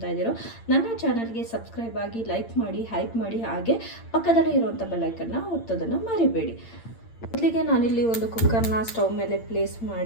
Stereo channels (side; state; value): right; late; 8.8 ms